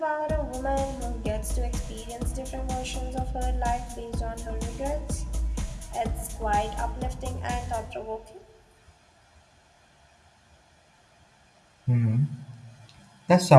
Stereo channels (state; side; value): identical; both; correlation 1.00